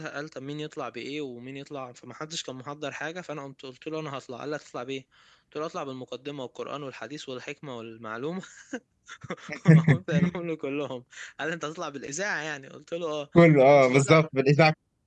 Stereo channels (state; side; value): identical; both; correlation 1.00